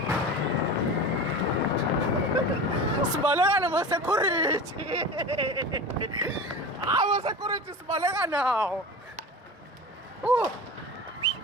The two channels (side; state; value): both; normal; correlation 0.31